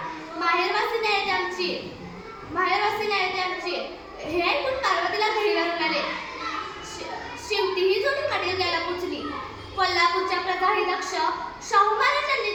माहेरवासी नाही आमची. हे ऐकून पार्वतीला घरी आले. शेवटी ही जोडी मडील घ्यायला पोचली. कोल्हापूरच्या प्रजाही दक्ष शाहू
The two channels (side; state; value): both; identical; correlation 1.00